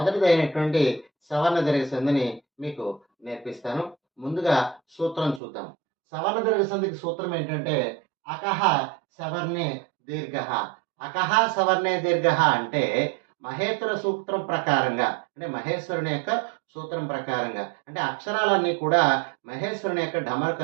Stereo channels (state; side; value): drops out; left; at 5.4 s